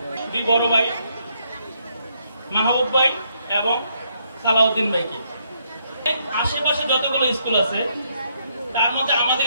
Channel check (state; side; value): inverted; both; correlation -0.75